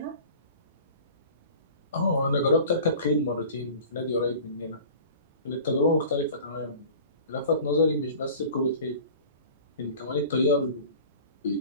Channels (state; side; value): inverted; both; correlation -0.42